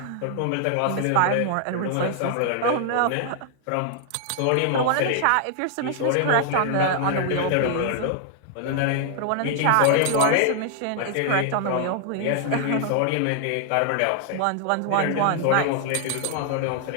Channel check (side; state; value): both; different; correlation 0.00